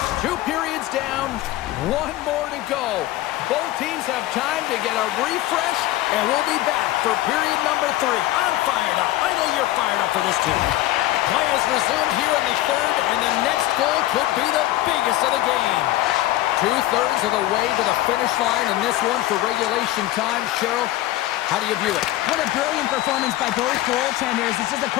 Two periods down, one more to go. Both teams have time to get a refresh, and we'll be back for period number 3. I'm fired up. I know you're fired up for this too. Play is resumed here in the third, and the next goal could be the biggest of the game. 2/3 of the way to the finish line in this one for regulation time. Cheryl, how do you view it? What a brilliant performance by both goaltenders. It's just a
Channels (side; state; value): right; quieter; 15.9 dB